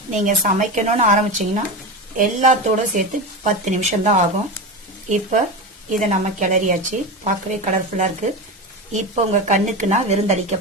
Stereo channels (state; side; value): normal; both; correlation 0.21